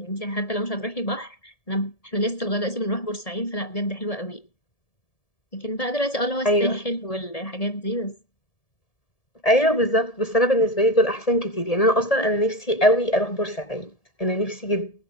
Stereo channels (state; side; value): late; right; 1.7 ms